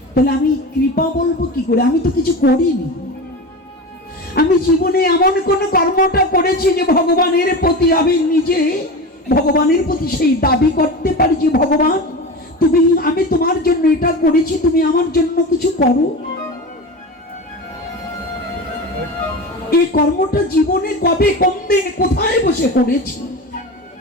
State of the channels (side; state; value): both; normal; correlation 0.27